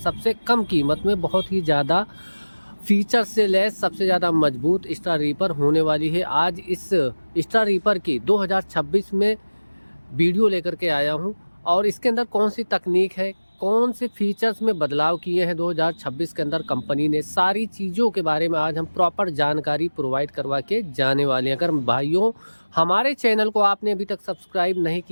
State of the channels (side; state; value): both; inverted; correlation -1.00